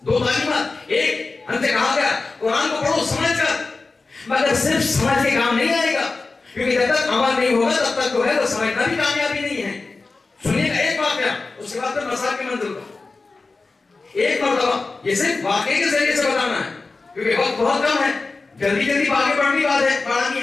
دو تعلیمات. ایک ہم سے کہا گیا قرآن کو پڑھو سمجھ کر، مگر صرف سمجھ کے کام نہیں آئے گا کیونکہ جب تک عمل نہیں ہوگا تب تک جو ہے وہ سمجھنا بھی کامیابی نہیں ہے. سنیے گا ایک واقعہ، اس کے بعد پھر مسائل کی منزل کا. ایک مرتبہ یہ صرف واقعے کے ذریعے سے بتانا ہے کیونکہ وقت بہت کم ہے، جلدی آگے بڑھنی بات ہے، پڑھانی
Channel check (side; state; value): right; quieter; 3.8 dB